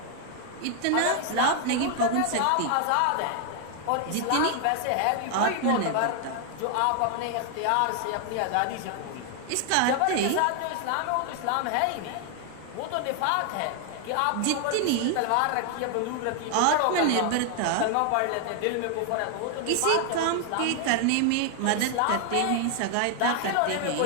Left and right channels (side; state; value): both; different; correlation 0.00